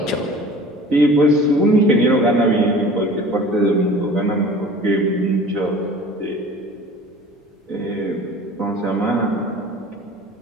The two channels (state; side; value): normal; both; correlation 0.44